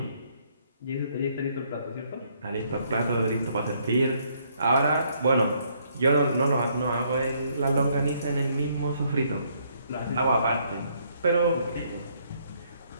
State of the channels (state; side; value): inverted; both; correlation -0.69